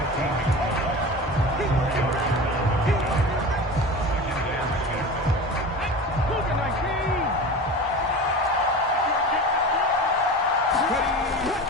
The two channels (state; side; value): normal; both; correlation 0.32